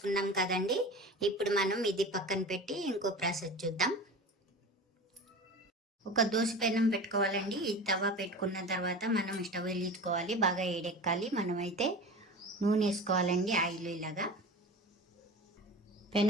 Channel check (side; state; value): both; normal; correlation 0.33